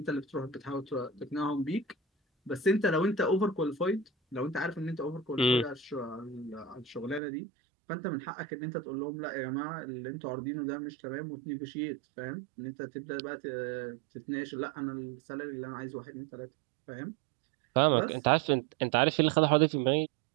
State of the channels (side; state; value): left; drops out; at 7.2 s